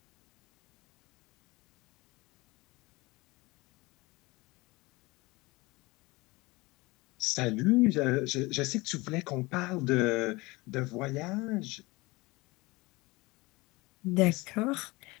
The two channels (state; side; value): quieter; right; 23.0 dB